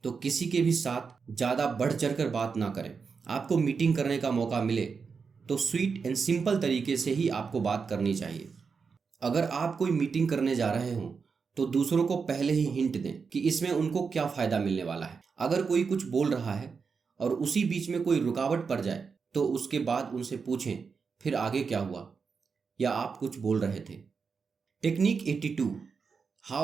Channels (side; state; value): left; quieter; 5.4 dB